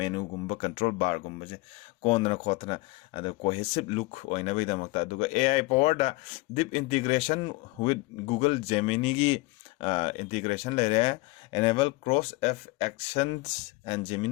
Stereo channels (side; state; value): right; quieter; 23.0 dB